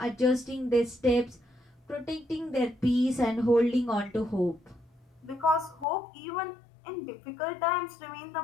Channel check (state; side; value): drops out; right; at 5.9 s